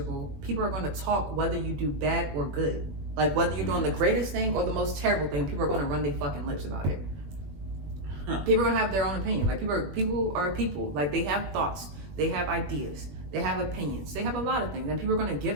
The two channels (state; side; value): late; left; 21 ms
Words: People are gonna talk whether you do bad or good. Like whether you're doing the greatest thing or the most terrible thing, people are gonna run their fucking lips about it. People are gonna have their own opinion. Like people are people. Like they have thoughts, they have ideas, they have opinions, they have a lot of things, and people are gonna